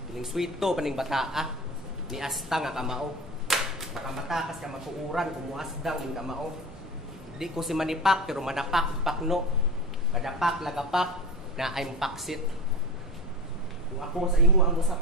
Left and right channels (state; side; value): normal; both; correlation 0.30